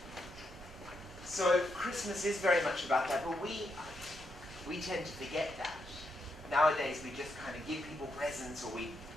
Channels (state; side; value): normal; both; correlation 0.81